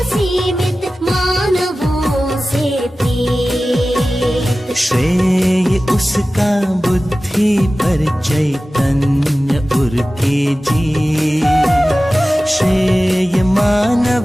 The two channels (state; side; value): normal; both; correlation 0.96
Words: पृथ्वी पर चैतन्य उरके जी, श्रेय